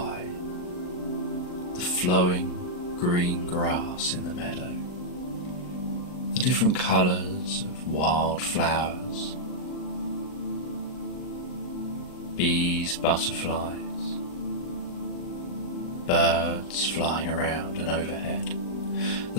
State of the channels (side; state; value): right; late; 39 ms